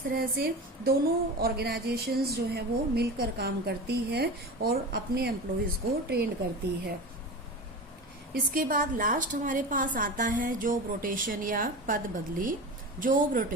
तरह से दोनों ऑर्गेनाइजेशंस जो है वो मिलकर काम करती है और अपने एम्प्लॉयज़ को ट्रेन करती है। इसके बाद लास्ट हमारे पास आता है जॉब रोटेशन या पद बदली। जॉब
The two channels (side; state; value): both; normal; correlation 0.28